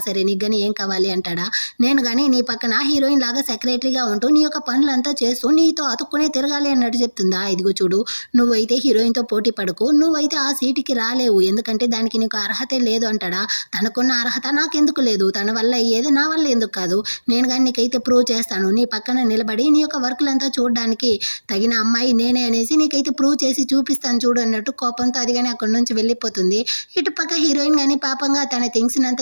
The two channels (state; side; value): inverted; both; correlation -1.00